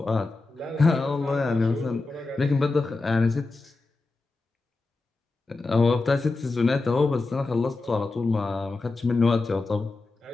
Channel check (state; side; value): quieter; right; 3.5 dB